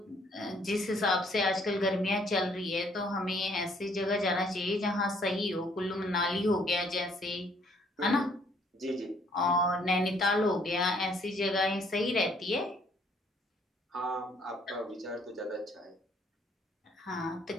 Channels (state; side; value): normal; both; correlation 0.64